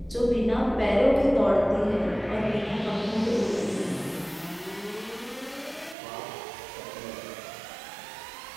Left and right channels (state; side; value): drops out; left; at 6.0 s